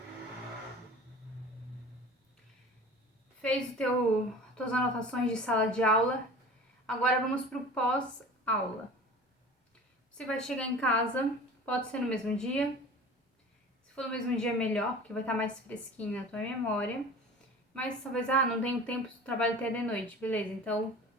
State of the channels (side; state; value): both; normal; correlation 0.40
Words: Fez tuas anotações de sala de aula. Agora vamos pro pós-aula. Você vai chegar em casa, pode ser no mesmo dia. Se for no mesmo dia, melhor, porque vai estar mais fresquinho na tua memória. Mas talvez, não tenho tempo, trabalho até de noite, beleza? Então,